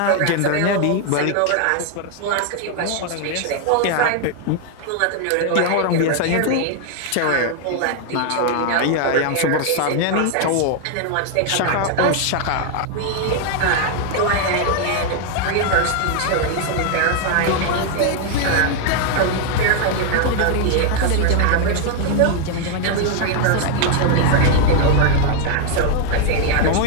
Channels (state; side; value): different; both; correlation 0.00